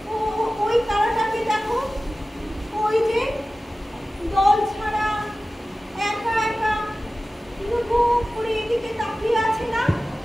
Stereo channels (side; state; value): both; normal; correlation 0.96